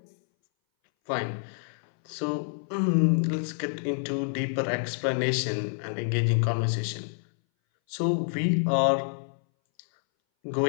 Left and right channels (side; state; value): right; silent; 60 dB below the other